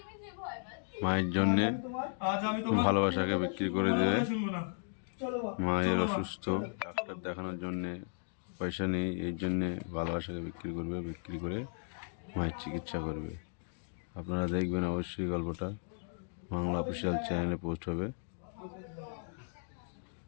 মায়ের জন্যে ভালোবাসাকে বিক্রি করে দেবে। মায়ের অসুস্থ, ডাক্তার দেখানোর জন্যে পয়সা নেই, এই জন্যে ভালোবাসাকে বিক্রি করবে। বিক্রি করে মায়ের চিকিৎসা করবে। আপনারা দেখবেন অবশ্যই গল্পটা। বাংলা অফিসিয়াল চ্যানেলে পোস্ট হবে।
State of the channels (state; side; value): silent; right; digital silence